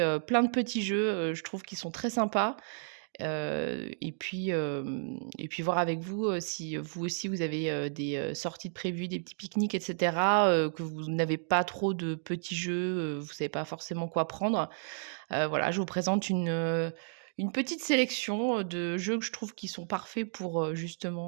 plein de petits jeux, je trouve qu'ils sont très sympas. Et puis voir avec vous, si vous aussi vous avez, des, sorties de prévues, des petits pique-niques et cetera, que vous n'avez pas trop de petits jeux, vous savez pas forcément quoi prendre. Voilà, je vous présente une petite sélection, de jeux que je trouve qui sont parfaits pour,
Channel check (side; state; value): left; silent; digital silence